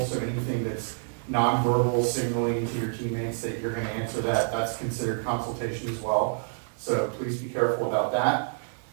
so anything that's nonverbal signaling to your teammates that you're going to answer that's considered consultation as well. So please be careful about that.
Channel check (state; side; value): silent; left; 60 dB below the other